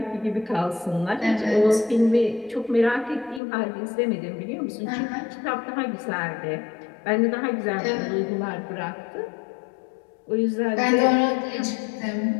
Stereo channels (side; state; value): right; drops out; at 3.4 s